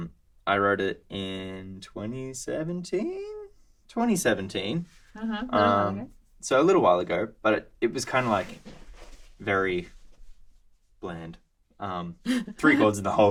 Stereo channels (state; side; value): identical; both; correlation 1.00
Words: I wrote it in 2017. 2017. So a little while ago, but it was kind of like very bland. 3 chords in the whole